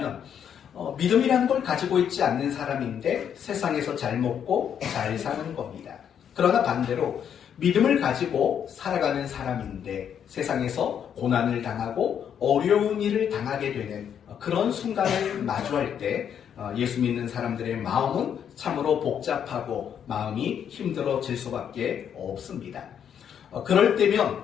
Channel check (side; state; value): right; quieter; 8.5 dB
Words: 믿음이라는 걸 가지고 있지 않는 사람인데 세상에서 잘 먹고 잘 사는 겁니다. 그러나 반대로 믿음을 가지고 살아가는 사람인데 세상에서 고난을 당하고 어려운 일을 당하게 되는 그런 순간을 마주할 때 예수 믿는 사람들의 마음은 참으로 복잡하고 마음이 힘들어질 수밖에 없습니다. 그럴